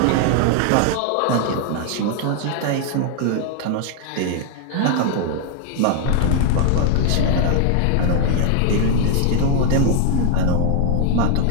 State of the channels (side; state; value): both; different; correlation 0.00